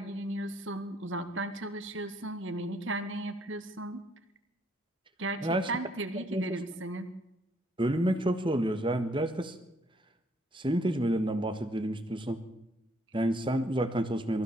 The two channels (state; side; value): normal; both; correlation 0.68